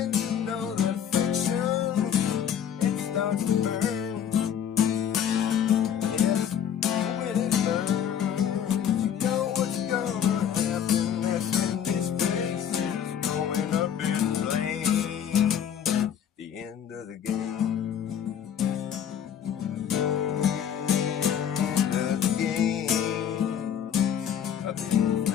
you know the friction, it starts to burn. Yes, when it burns, you know what's gonna happen. That's when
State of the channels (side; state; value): right; quieter; 8.9 dB